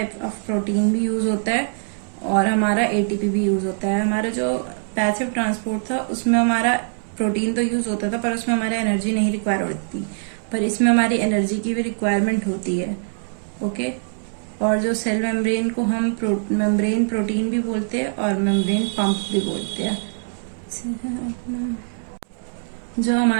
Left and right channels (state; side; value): silent; left; digital silence